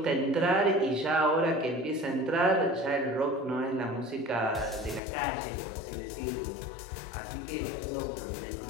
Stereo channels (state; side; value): drops out; right; at 5.0 s